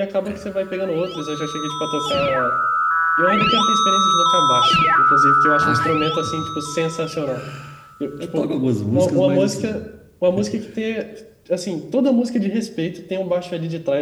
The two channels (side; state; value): both; identical; correlation 1.00